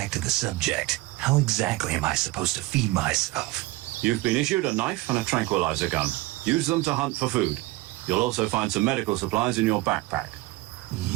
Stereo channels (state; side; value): quieter; left; 19.5 dB